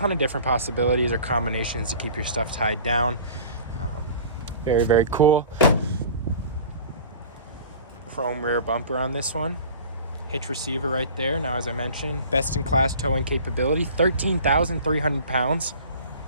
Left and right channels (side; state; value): both; inverted; correlation -0.42